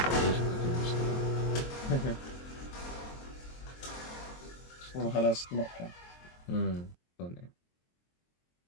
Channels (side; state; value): right; late; 23 ms